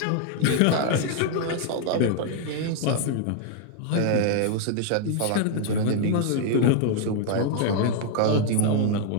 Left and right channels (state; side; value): different; both; correlation 0.00